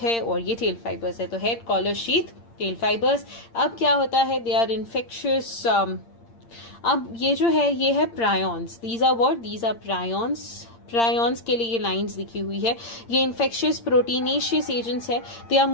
है, और ये टेल फाइबर्स है। तो head, collar, sheath, tail fibres. अब क्या होता है, दे आर इन्फेक्शियस। अब ये जो है ये है prions, these are what, these are prions. Prions के लिए ये लाइंस लिखी हुई है, ये इन्फेक्शियस प्रोटीनेशियस एजेंट्स है। They are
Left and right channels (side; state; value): right; late; 8.7 ms